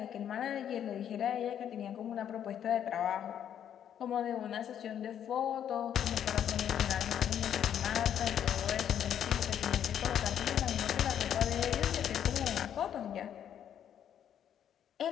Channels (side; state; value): right; quieter; 9.6 dB